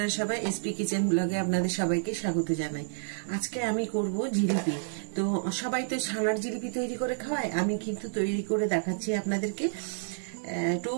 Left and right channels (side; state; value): left; silent; 57 dB below the other